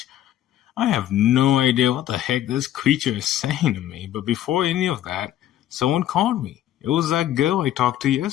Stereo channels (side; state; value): right; quieter; 12.4 dB